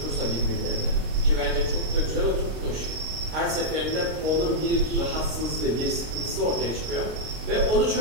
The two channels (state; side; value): late; left; 26 ms